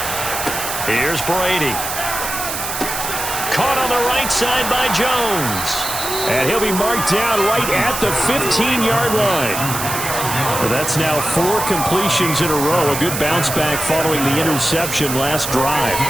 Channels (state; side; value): noise; right; hiss, 5 dB below the sound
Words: Here's Brady. Caught on the right side by Jones. And he'll be marked down right at the 15-yard line. Well, that's now 4 completions in a row. A good bounce back following the interception last drive.